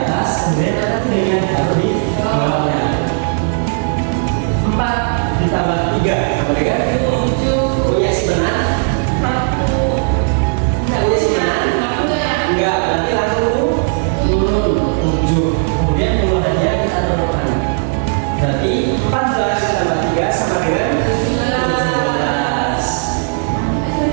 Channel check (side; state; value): left; silent; 65 dB below the other